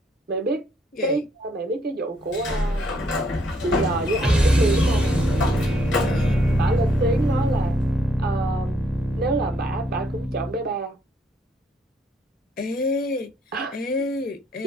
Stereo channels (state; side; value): normal; both; correlation 0.69